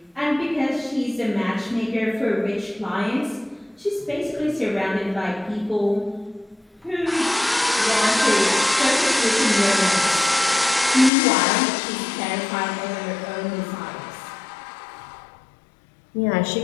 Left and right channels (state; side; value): drops out; right; at 11.1 s